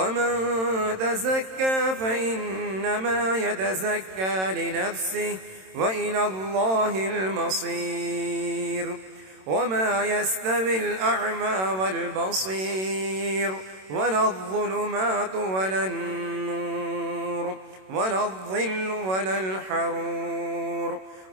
تزكى فإنما يتزكى لنفسه وإلى الله المصير وما يستوي الأعمى والبصير ولا الظلمات ولا النور ولا الظل ولا الحرور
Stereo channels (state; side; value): late; left; 27 ms